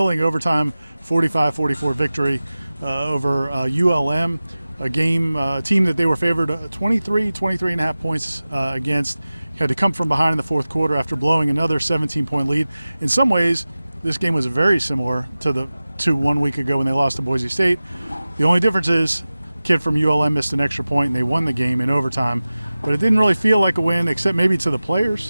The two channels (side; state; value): both; inverted; correlation -0.97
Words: overtime 45-44 victory over ULM, a team that they were favored 23.5 points against. Had to come from behind in the fourth quarter after blowing another 17-point lead. In some ways, this game was very similar to 1 week ago when they lost to Boise State. The only difference is kid from ULM missed an extra point and they won the game in overtime, but it didn't really feel like a win except maybe to the